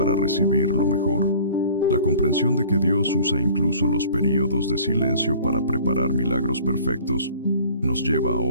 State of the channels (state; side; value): inverted; both; correlation -0.49